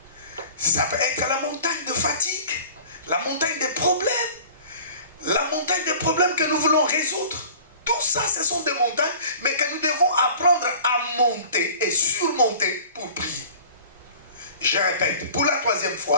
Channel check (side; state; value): both; inverted; correlation -0.44